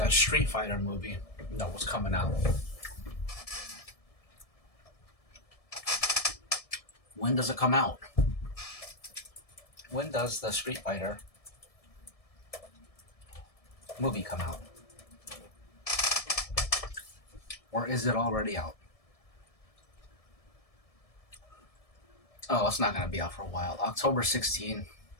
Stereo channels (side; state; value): right; late; 1.7 ms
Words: Street Fighter movie that was coming out. When does it come out? When does the Street Fighter movie come out? Or is it already out? Oh, it's not going to be out for a while. October 16.